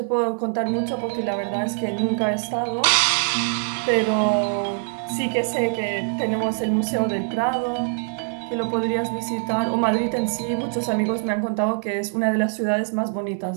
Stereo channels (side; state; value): left; silent; 59 dB below the other